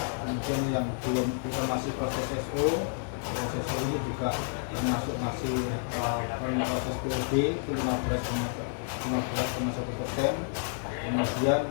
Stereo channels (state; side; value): silent; right; 58 dB below the other